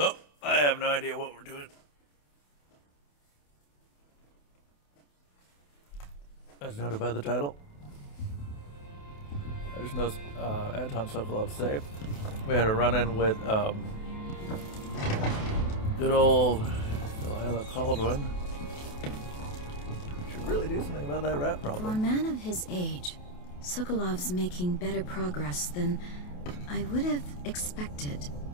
I have no idea what we're doing. As noted by the title. I just know Anton Sokolov say we had a run-in with good old Delilah Caldwin. Should really do something about that rat problem. For a man of his age, Sokolov's making better progress than I would have expected.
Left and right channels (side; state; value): right; late; 28 ms